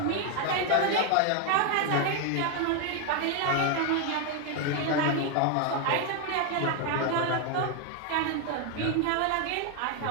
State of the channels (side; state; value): both; different; correlation 0.01